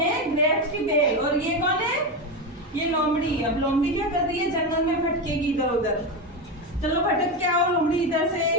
ग्रेप्स की बेल और ये कौन है? ये लोमड़ी। अब लोमड़ी क्या कर रही है? जंगल में भटकेगी इधर उधर। चलो भटक के आओ लोमड़ी इधर से।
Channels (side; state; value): both; normal; correlation 0.15